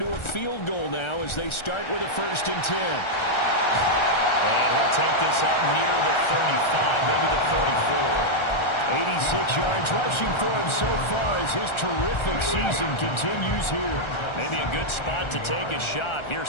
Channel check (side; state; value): right; late; 1.3 ms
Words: a field goal now as they start with a 1st and 10. And he'll take this up near the 35, maybe the 34. 86 yards rushing for him so far as his terrific season continues here. Maybe a good spot to take a shot. Here's